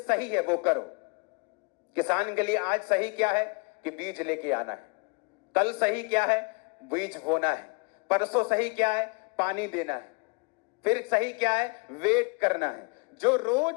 है वो करो। किसान के लिए आज सही क्या है कि बीज लेके आना है। कल सही क्या है? बीज बोना है। परसों सही क्या है? पानी देना है। फिर सही क्या है? वेट करना है। जो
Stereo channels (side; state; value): right; quieter; 31.0 dB